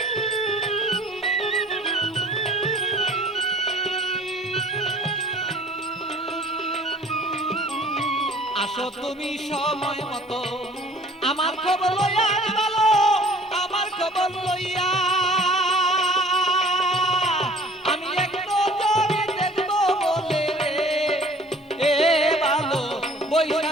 আসো তুমি সময় মতো আমার খবর লইয়া ভালো আমার খবর লইয়া আমি একটু জোরে দেখবো বলে এ ভালো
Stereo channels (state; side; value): normal; both; correlation 0.50